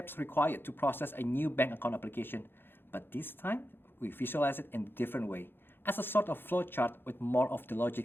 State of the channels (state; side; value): late; right; 0.10 ms